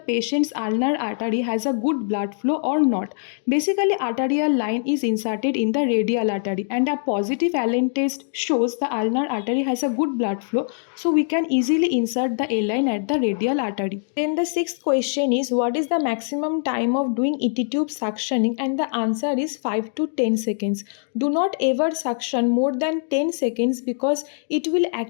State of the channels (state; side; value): silent; right; digital silence